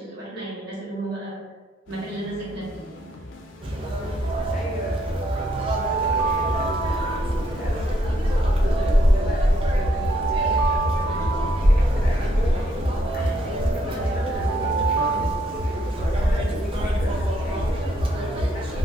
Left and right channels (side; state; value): both; normal; correlation 0.73